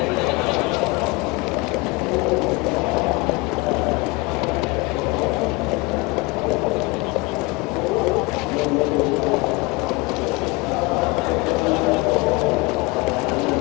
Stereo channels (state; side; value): quieter; right; 24.2 dB